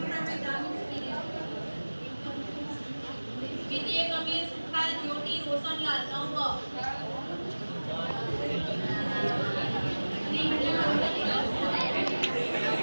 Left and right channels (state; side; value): inverted; both; correlation -1.00